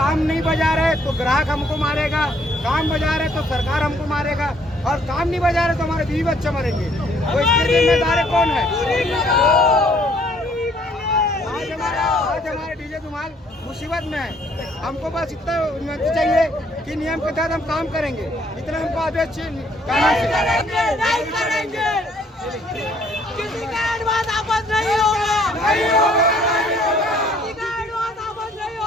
नहीं बजा रहे तो ग्राहक हमको मारेगा, काम बजा रहे तो सरकार हमको मारेगा और काम नहीं बजा रहे तो हमारे बीवी बच्चे मरेंगे। तो इसके जिम्मेदार कौन है? आज हमारे डीजे धुमाल मुसीबत में है। हमको बस इतना अनुमति चाहिए कि नियम के तहत हम काम करेंगे। इतना हमको आदेश चाहिए।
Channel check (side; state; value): both; normal; correlation 0.63